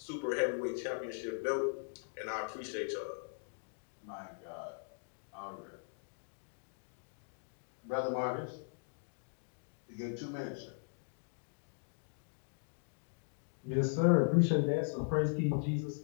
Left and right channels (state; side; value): silent; right; digital silence